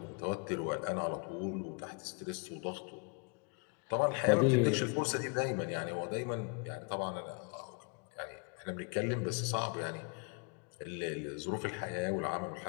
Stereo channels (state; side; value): quieter; right; 35.6 dB